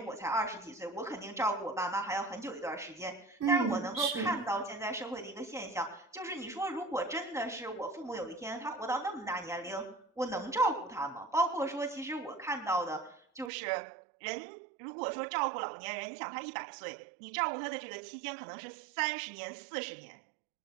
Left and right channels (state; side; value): drops out; left; at 13.5 s